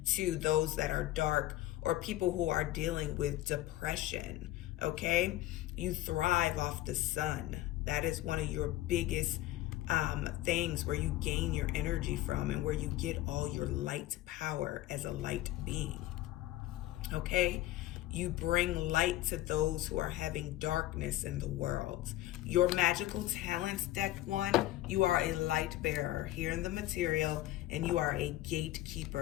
to those that are dark or people who are dealing with depression. Okay? You thrive off the sun. That is one of your biggest things where you gain your energy from and where you get all your light power as a light being. Okay? You bring light to those who are having darkness in the world. Your magical talents, deck 1, you are a light bearer here in the material, and you are a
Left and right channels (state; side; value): quieter; right; 15.2 dB